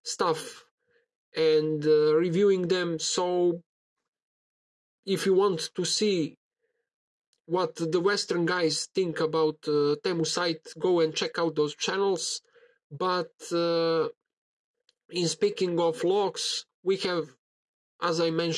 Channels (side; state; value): both; identical; correlation 1.00